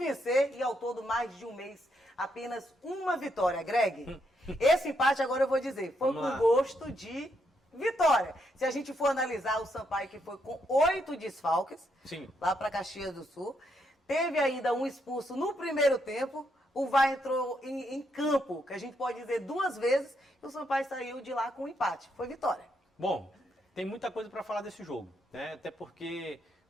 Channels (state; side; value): normal; both; correlation 0.77